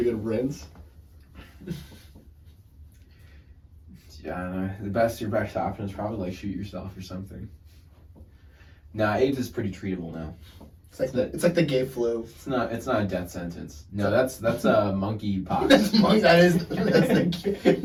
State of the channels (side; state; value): both; identical; correlation 1.00